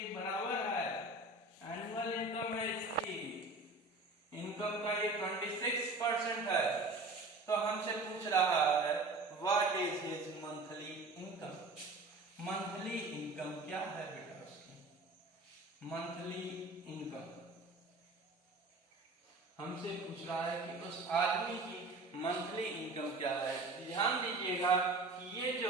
बराबर है। एनुअल इनकम है इसकी, इनकम का ये 26% है। तो हमसे पूछ रहा है what is his monthly income. Monthly income क्या है बेटा उसकी? मंथली इनकम हमसे पूछ रहा है कि उस आदमी की मंथली इनकम क्या है। ध्यान दीजिएगा कि ये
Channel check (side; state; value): left; quieter; 3.1 dB